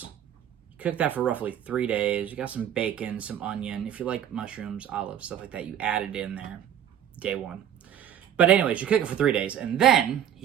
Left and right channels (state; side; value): quieter; left; 9.9 dB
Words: You cook that for roughly 3 days. You got some bacon, some onion. If you like mushrooms, olives, stuff like that, you add it in there day one. But anyways, you cook it for 3 days, and then